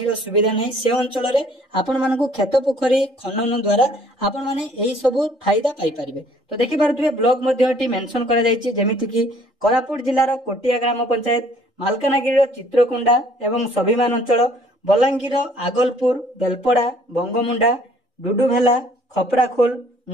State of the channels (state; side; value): normal; both; correlation 0.58